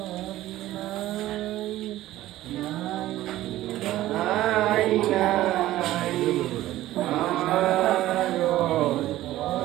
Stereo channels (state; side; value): quieter; left; 15.1 dB